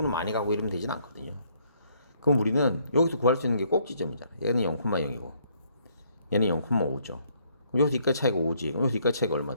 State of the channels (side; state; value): both; inverted; correlation -0.67